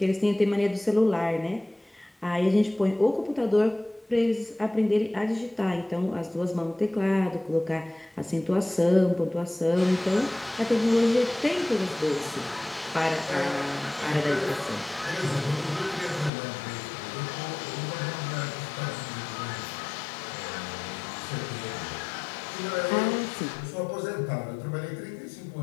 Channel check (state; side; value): drops out; right; at 16.3 s